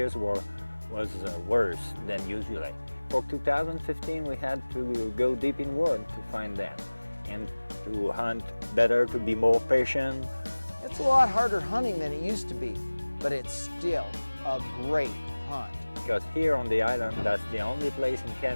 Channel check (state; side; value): inverted; both; correlation -1.00